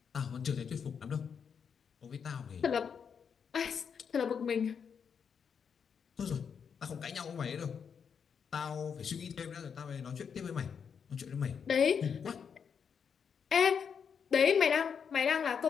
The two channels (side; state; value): right; quieter; 6.8 dB